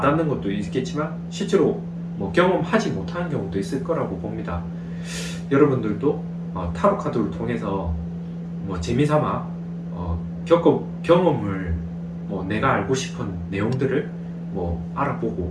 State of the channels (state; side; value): identical; both; correlation 1.00